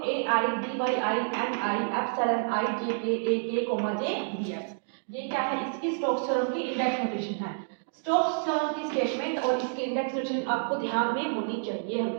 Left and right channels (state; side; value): silent; left; digital silence